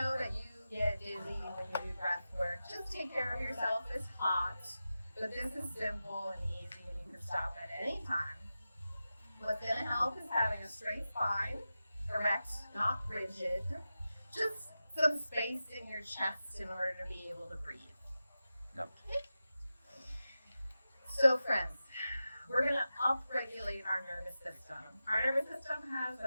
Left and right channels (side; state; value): both; inverted; correlation -0.93